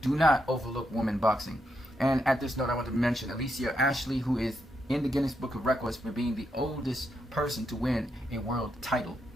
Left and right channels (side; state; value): both; normal; correlation 0.81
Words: not overlook women boxing. And at this note, I want to mention Alicia Ashley, who is in the Guinness Book of Records for being the oldest person to win a world title.